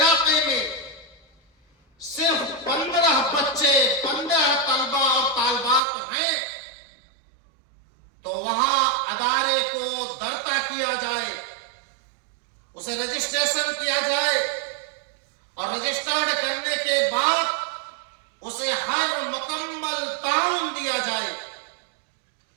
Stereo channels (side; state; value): left; drops out; at 5.8 s